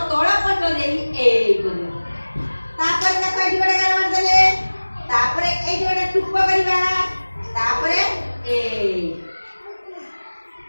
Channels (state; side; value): inverted; both; correlation -1.00